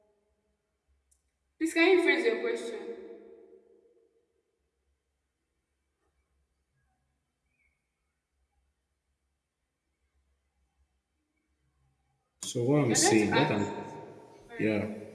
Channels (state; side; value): identical; both; correlation 1.00